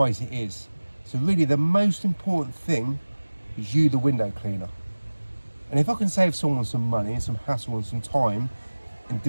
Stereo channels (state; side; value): inverted; both; correlation -1.00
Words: it is. So really the most important thing is you, the window cleaner. And if I can save someone some money and some hassle and some time and